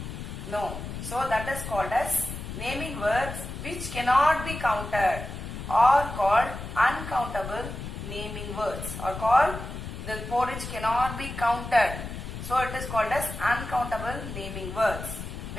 No. So that is called as naming words which cannot be counted, or called uncountable naming words, or called the porridge cannot be counted. So it is called as uncountable naming words.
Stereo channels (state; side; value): noise; left; rumble, 8 dB below the sound